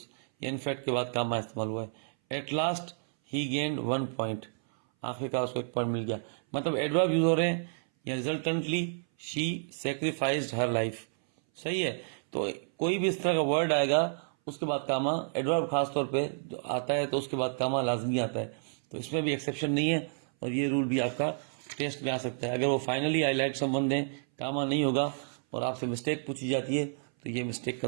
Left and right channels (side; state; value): left; silent; 58 dB below the other